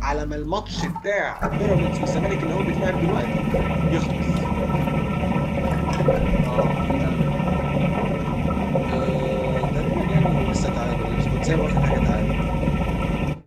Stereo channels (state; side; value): identical; both; correlation 1.00